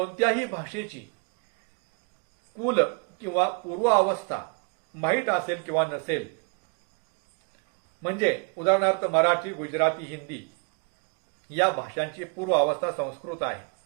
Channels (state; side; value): quieter; left; 35.8 dB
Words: भाषेची कुल किंवा पूर्व अवस्था माहीत असेल किंवा नसेल, म्हणजे उदाहरणार्थ मराठी, गुजराती, हिंदी या भाषांची पूर्व अवस्था संस्कृत आहे